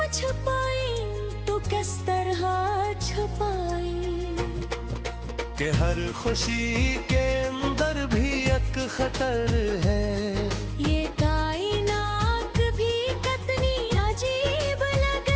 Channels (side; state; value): both; identical; correlation 1.00